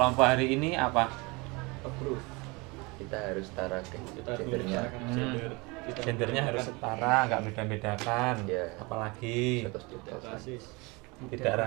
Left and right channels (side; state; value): left; quieter; 26.5 dB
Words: hari ini apa? kita harus setara gendernya. Gendernya harus setara, nggak beda-bedakan. Ya. Apalagi Terus juga. tidak